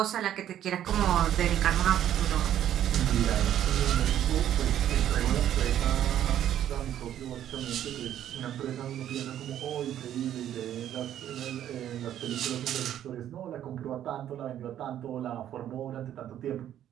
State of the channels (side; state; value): left; quieter; 11.1 dB